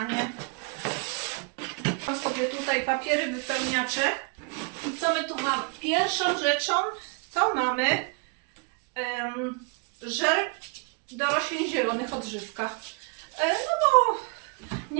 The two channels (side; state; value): left; quieter; 34.2 dB